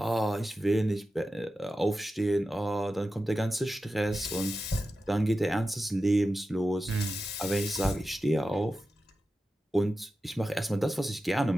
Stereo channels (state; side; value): normal; both; correlation 0.92